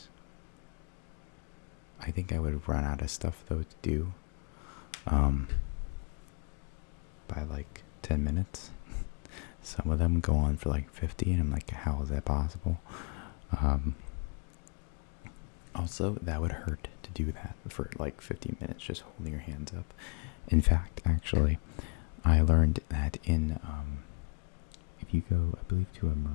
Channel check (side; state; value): right; quieter; 35.8 dB